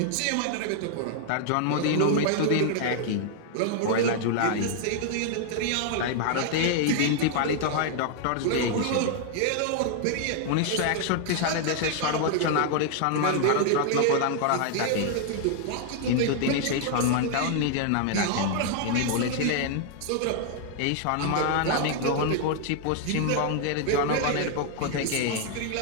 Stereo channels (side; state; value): both; different; correlation 0.00